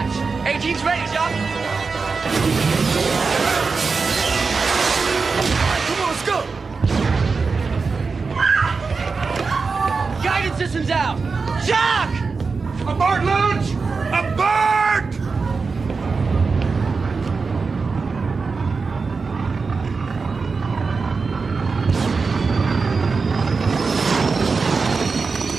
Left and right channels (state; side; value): quieter; left; 4.6 dB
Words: 18's ready, Jock. Come on, let's go! Guidance system's out. Jock! Aboard launch! Aboard!